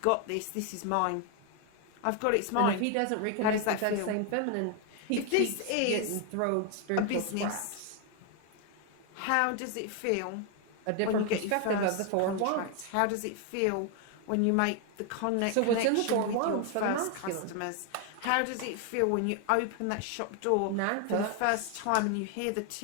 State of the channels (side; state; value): both; different; correlation 0.01